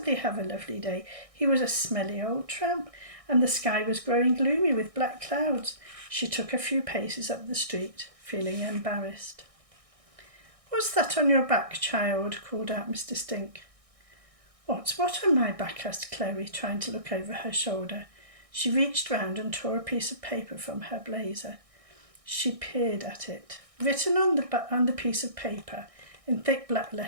have a lovely day? He was a smelly old tramp, and the sky was growing gloomy with black clouds. She took a few paces up the street, feeling embarrassed. What's that on your back, child? Called out Mr. Stink. What's what on my back? Asked Chloe, trying to look over her shoulder. She reached round and tore a piece of paper from her blazer. She peered at it. Written on the piece of paper, in thick black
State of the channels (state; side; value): late; left; 1.6 ms